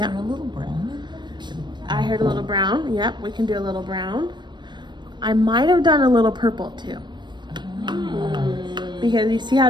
there a little brown in there? I heard a little brown. Yep, we can do a little brown. I might have done a little purple too. Because you see how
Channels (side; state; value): left; late; 0.22 ms